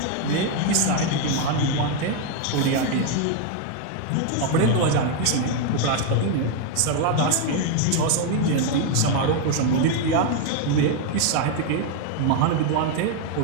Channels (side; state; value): both; different; correlation 0.01